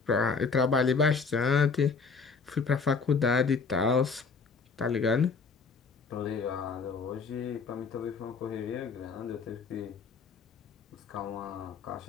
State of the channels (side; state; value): right; quieter; 4.9 dB